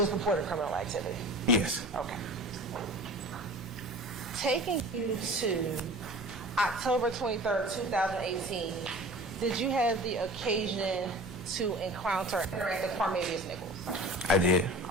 purported criminal activity? Yes. Okay. Taking you to October 23rd, 2018, did you have the occasion to encounter and interact with Cornelius Nichols? I did.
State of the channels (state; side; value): normal; both; correlation 0.39